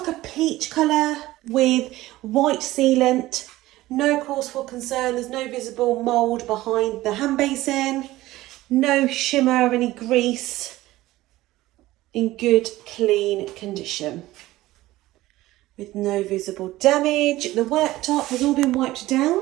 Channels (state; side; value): quieter; left; 17.0 dB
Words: a peach colour with white sealant. No cause for concern, there's no visible mould behind the hand basin. No shimmer or any grease. In good, clean condition. With no visible damage. The worktop has all been wiped down.